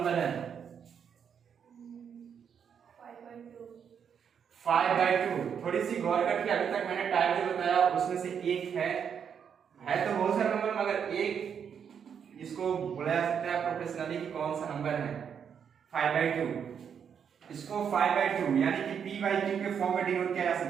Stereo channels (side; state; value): left; quieter; 7.5 dB